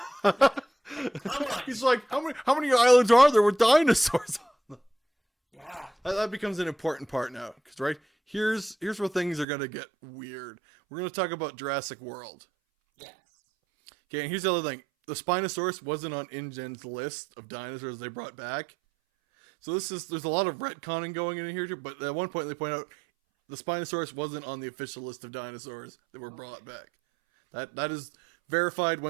He's like, how many islands are there with dinosaurs on them? Yeah. That becomes an important part now. Because, right, here's where things are going to get weird. We're going to talk about Jurassic World. Yes. Okay, and here's the other thing. The Spinosaurus wasn't on InGen's list of dinosaurs they brought back. So there's a lot of retconning going in here too, but at one point they point out the Spinosaurus wasn't on the official list of dinosaurs that were brought back. That is verified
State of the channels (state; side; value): drops out; left; at 9.5 s